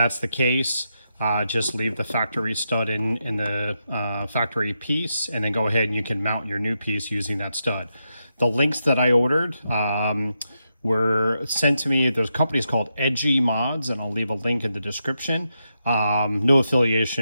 the case, just leave the factory stud in the factory piece, and then go ahead and you can mount your new piece using that stud. The links that I ordered were sent to me. There's companies called Edgy Mods, and I'll leave a link in the description. No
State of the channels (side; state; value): both; inverted; correlation -0.85